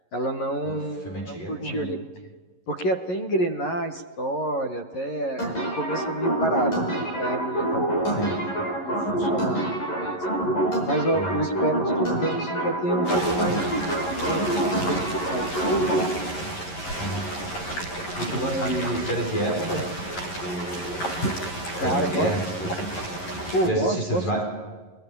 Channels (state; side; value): late; right; 11 ms